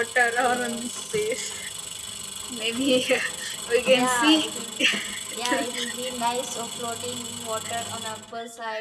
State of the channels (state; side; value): identical; both; correlation 1.00